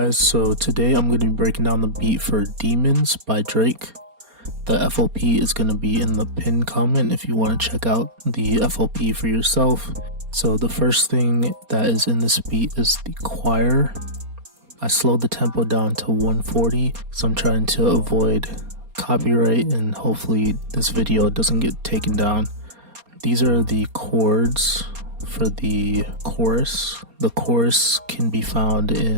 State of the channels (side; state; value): left; late; 4.3 ms